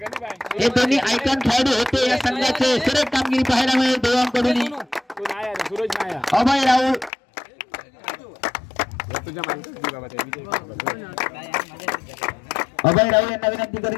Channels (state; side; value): drops out; right; at 7.1 s